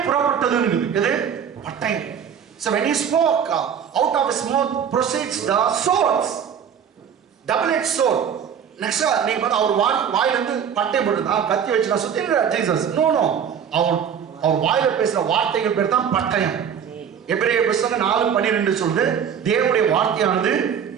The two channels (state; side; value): quieter; left; 7.9 dB